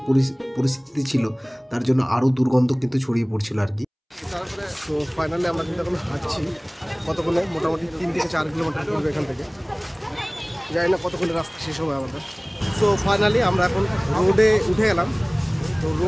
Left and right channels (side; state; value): both; identical; correlation 1.00